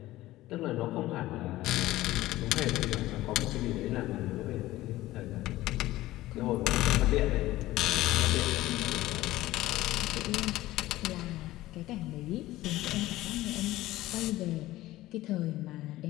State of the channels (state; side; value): quieter; right; 16.6 dB